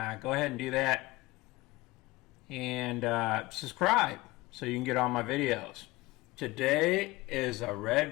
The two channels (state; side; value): quieter; right; 20.7 dB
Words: go ahead and do that. And subscribe so you can get all my videos. Today is a